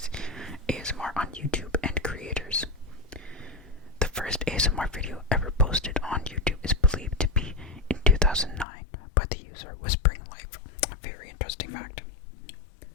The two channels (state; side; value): drops out; right; at 8.7 s